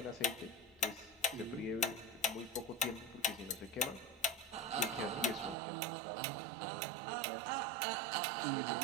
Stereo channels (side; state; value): left; drops out; at 5.6 s